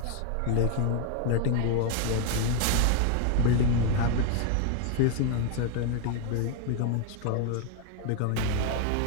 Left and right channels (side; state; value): both; different; correlation 0.00